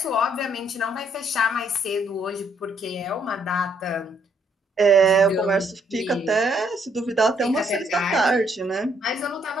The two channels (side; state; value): both; normal; correlation 0.69